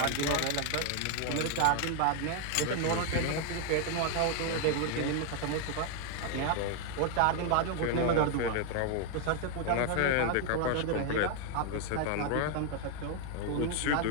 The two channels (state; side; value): different; both; correlation 0.00